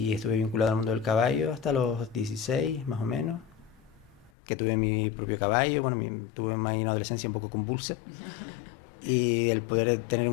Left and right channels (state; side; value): drops out; right; at 4.3 s